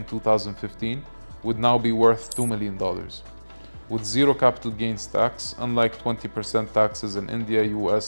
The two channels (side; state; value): both; inverted; correlation -1.00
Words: 2015 would now be worth $2 million, with zero capital gains tax, unlike 20% taxes in India,